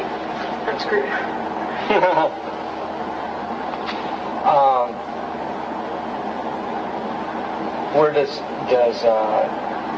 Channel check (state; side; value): identical; both; correlation 1.00